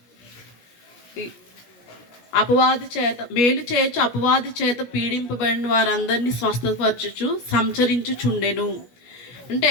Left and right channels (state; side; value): late; right; 17 ms